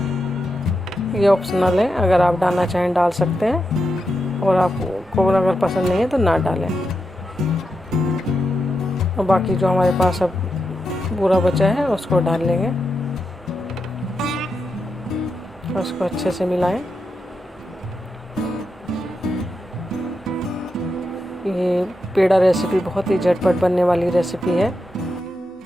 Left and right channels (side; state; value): both; normal; correlation 0.86